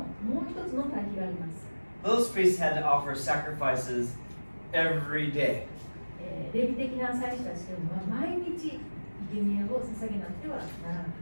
もう一つの対比があります。 Those priests had to offer sacrifices every day. レビ的な祭司たちというのは毎日生贄を捧げなくてはならなかっ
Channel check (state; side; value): inverted; both; correlation -1.00